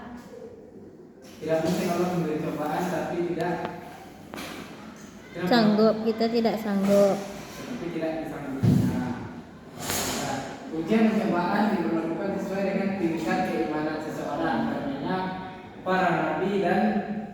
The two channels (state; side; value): identical; both; correlation 1.00